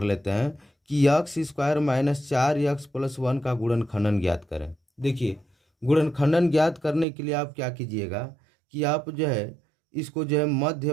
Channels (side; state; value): left; drops out; at 7.1 s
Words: लेते हैं कि यक्स स्क्वायर माइनस 4x+1 का गुणनखंडन ज्ञात करें। देखिए, गुणनखंडन ज्ञात करने के लिए आप क्या कीजिएगा कि आप जो है इसको जो है